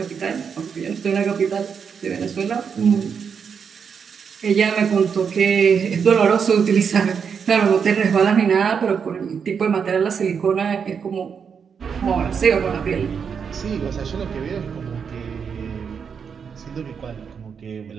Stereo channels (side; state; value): left; quieter; 6.6 dB